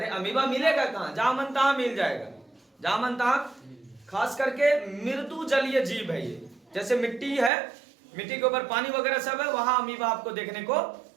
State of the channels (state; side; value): drops out; left; at 7.5 s